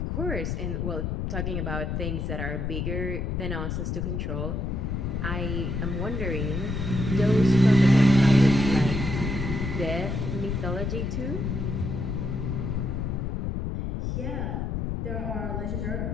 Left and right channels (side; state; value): left; noise; rumble, 2 dB below the sound